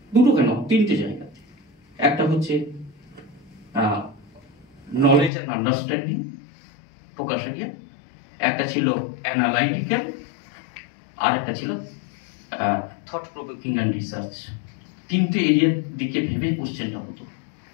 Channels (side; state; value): right; drops out; at 5.3 s